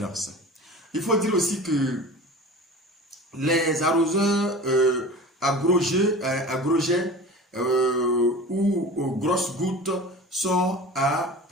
Il faut dire aussi que les arroseurs à gros jets ou grosses gouttes sont à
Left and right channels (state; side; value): normal; both; correlation 0.37